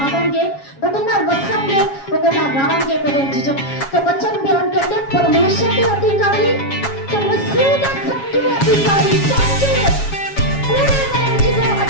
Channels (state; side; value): late; right; 7.3 ms